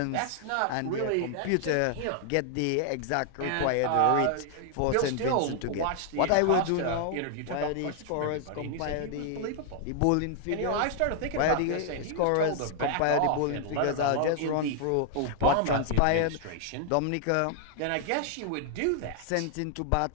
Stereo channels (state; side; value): different; both; correlation 0.00